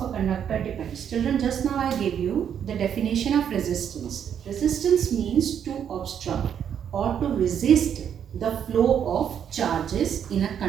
a conductor depends. Children, just now I gave you the definition of resistance. Resistance means to obstruct or to resist the flow of charges in a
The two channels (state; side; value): quieter; left; 8.6 dB